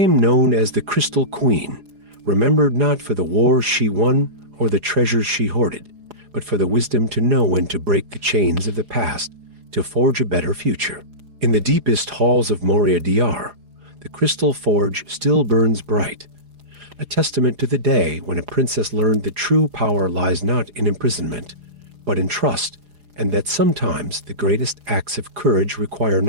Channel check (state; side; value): late; left; 4.8 ms